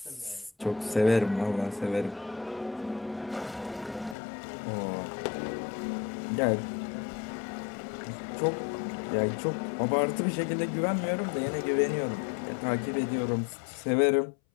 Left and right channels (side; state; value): right; drops out; at 4.2 s